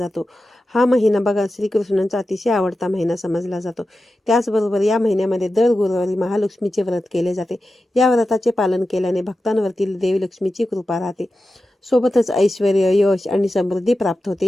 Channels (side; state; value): both; normal; correlation 0.93